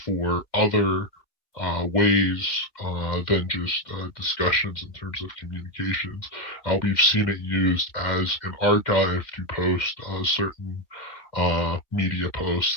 other ways than just discussions in terms of communications. We've seen it used as an archive to post certain media posts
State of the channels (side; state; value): right; late; 2.2 ms